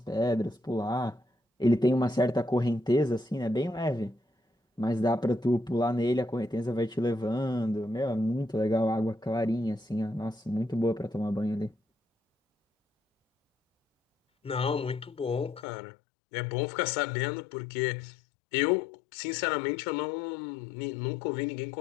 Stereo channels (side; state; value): right; drops out; at 15.7 s